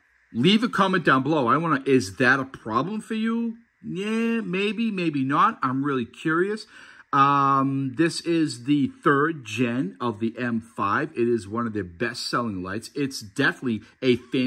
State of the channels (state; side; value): identical; both; correlation 1.00